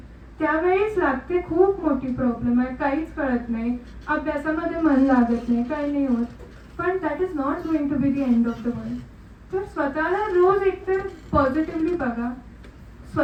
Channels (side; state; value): both; identical; correlation 1.00